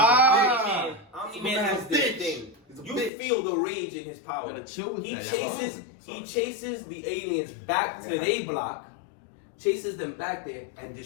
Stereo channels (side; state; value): right; drops out; at 3.1 s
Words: Omni-Man has this thing. You feel the rage in his power. He chases the aliens back to their block, chases them back there, and